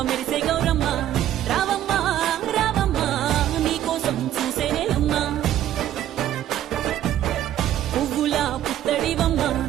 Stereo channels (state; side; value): quieter; left; 12.0 dB